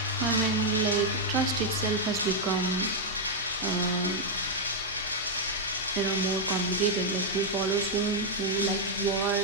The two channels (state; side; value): normal; both; correlation -0.03